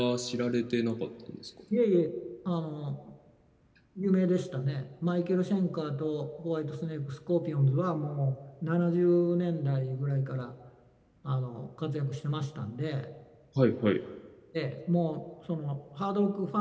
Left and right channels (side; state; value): both; identical; correlation 1.00